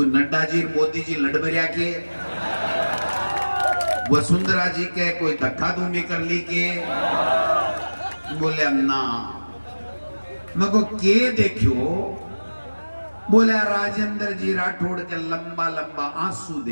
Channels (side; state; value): both; inverted; correlation -1.00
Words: नड्डा जी मोदी जी लड़बरिया के, वसुंधरा जी के कोई धक्का धूमी कर ली के, बोले ना मैं को के देखियो, बोले राजेंद्र जी राठौड़ के लंबा लंबा आंसू